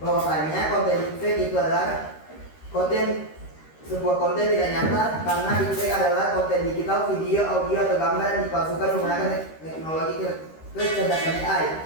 Bahwasanya konten deepfake itu adalah sebuah konten tidak nyata, karena deepfake adalah konten digital, video, audio, atau gambar yang dipalsukan menggunakan teknologi kecerdasan AI.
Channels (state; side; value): late; right; 13 ms